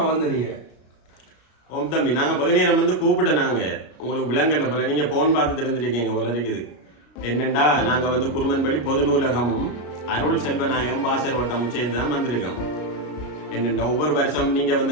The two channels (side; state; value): right; late; 33 ms